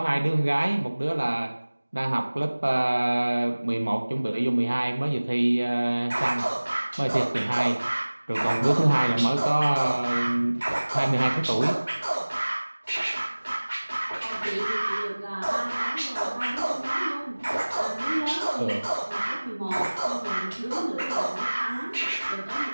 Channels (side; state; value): both; inverted; correlation -1.00